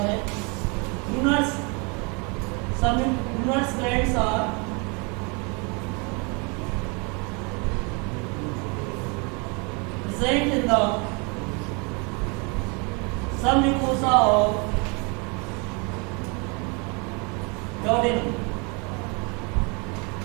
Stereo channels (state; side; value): quieter; left; 31.6 dB